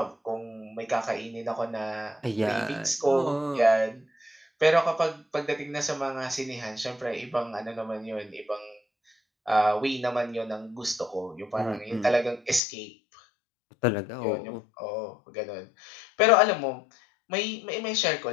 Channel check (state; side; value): drops out; right; at 12.6 s